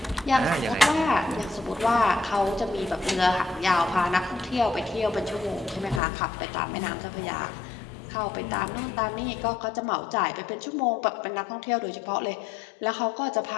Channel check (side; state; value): right; drops out; at 6.0 s